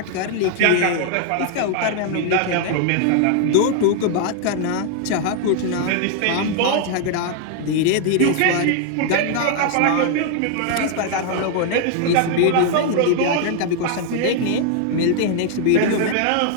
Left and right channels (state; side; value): different; both; correlation 0.00